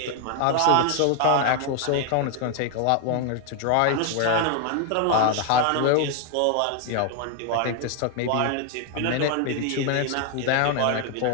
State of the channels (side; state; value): both; different; correlation 0.00